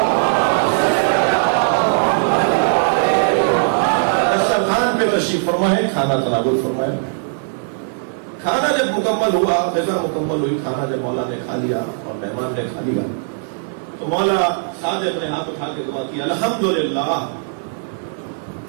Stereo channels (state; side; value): silent; left; 57 dB below the other